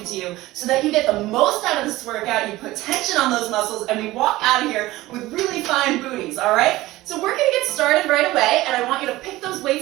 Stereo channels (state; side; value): quieter; left; 17.8 dB